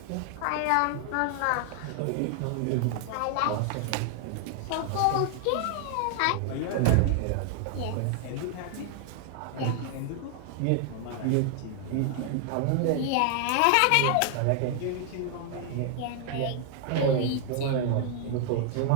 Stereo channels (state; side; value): different; both; correlation 0.00